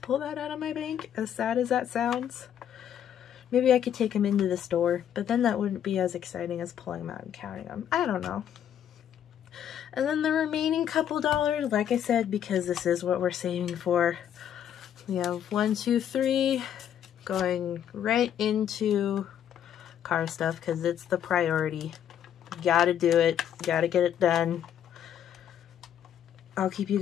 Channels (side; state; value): right; quieter; 9.7 dB